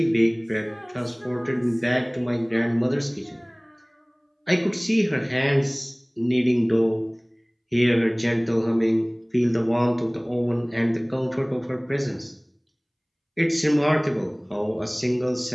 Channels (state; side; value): identical; both; correlation 1.00